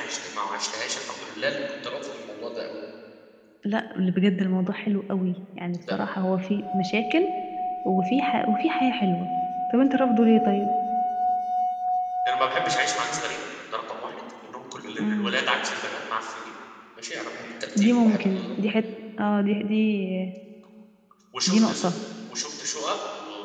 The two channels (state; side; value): identical; both; correlation 1.00